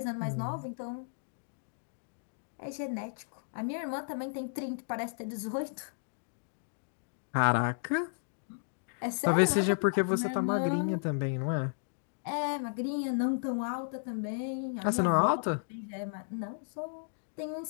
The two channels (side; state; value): right; silent; digital silence